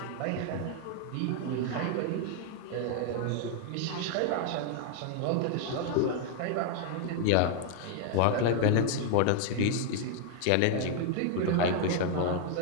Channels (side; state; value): both; different; correlation 0.00